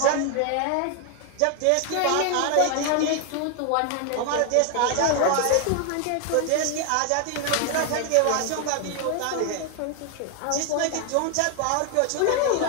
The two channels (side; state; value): both; different; correlation 0.01